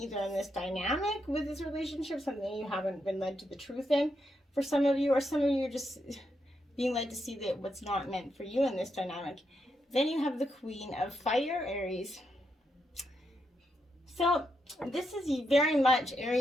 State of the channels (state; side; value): normal; both; correlation 0.82